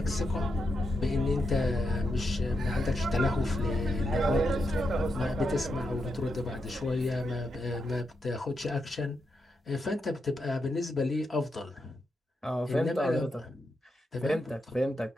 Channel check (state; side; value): normal; both; correlation 0.84